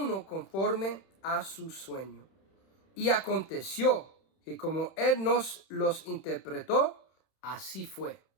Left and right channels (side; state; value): right; late; 31 ms